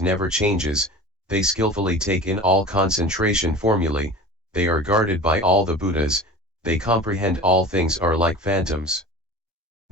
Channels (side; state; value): both; normal; correlation 0.36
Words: never changes, they skillfully take in all concentration formulae, they are guarded by all the Buddhas, they comprehend all things are like phantoms.